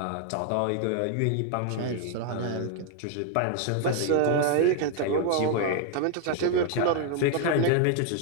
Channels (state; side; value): different; both; correlation 0.00